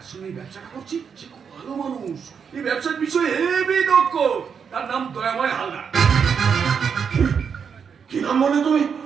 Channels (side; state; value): left; quieter; 6.7 dB